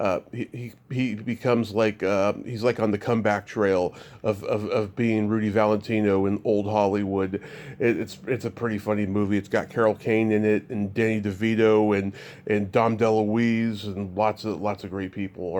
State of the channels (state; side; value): identical; both; correlation 1.00